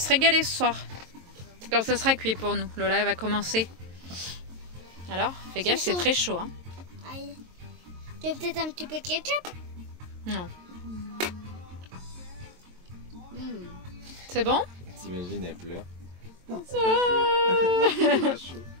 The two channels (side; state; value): left; late; 22 ms